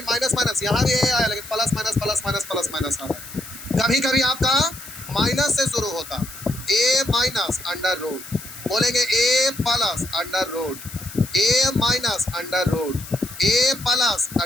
माइनस माइनस, यहाँ भी ए आया लेकिन plus minus plus minus plus minus आ रहा है, कभी कभी आपका माइनस से शुरू होता, ए माइनस अंडर रूट, बोलेंगे ए plus under root A minus under root A plus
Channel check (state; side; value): noise; left; hiss, 14 dB below the sound